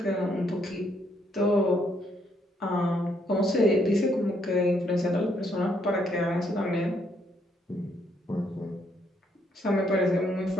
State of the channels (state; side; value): normal; both; correlation 0.72